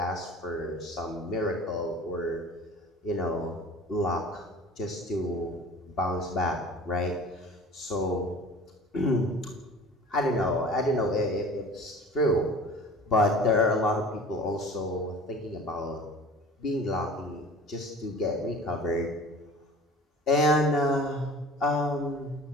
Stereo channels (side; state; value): both; normal; correlation 0.42